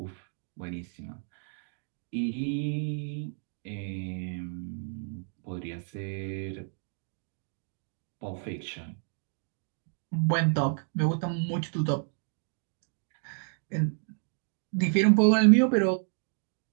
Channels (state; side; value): silent; left; 57 dB below the other